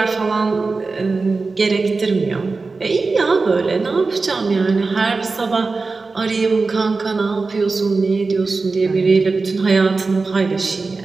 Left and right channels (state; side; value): quieter; left; 4.0 dB